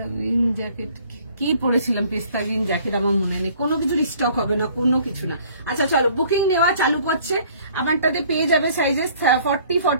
গ্রিন জ্যাকেট কি পরেছিলাম, পিস্তা গ্রিন জ্যাকেট আমার মনে নেই, কোনো কিছুর স্টক হবে না, কোনো কিছু না। আচ্ছা চলো বুকিং নেওয়া চালু করছে। আমারটাতে পেয়ে যাবে সাইজেস 40,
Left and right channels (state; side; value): inverted; both; correlation -0.56